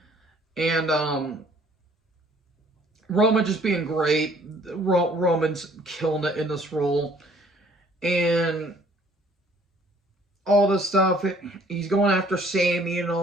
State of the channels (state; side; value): normal; both; correlation 0.58